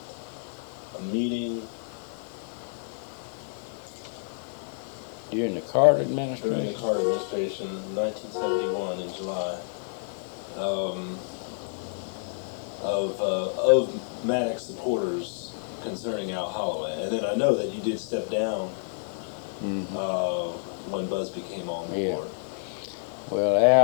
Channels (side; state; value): right; silent; 59 dB below the other